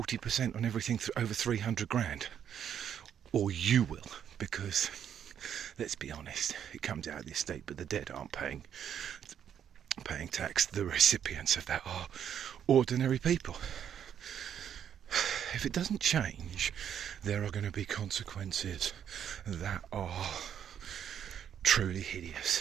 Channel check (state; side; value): quieter; left; 9.0 dB